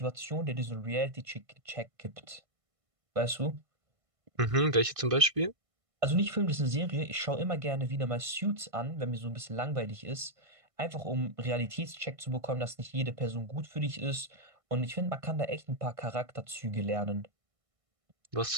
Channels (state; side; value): late; left; 1.6 ms